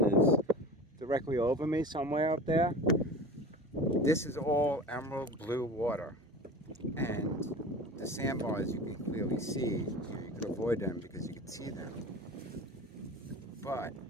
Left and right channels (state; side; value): normal; both; correlation 0.35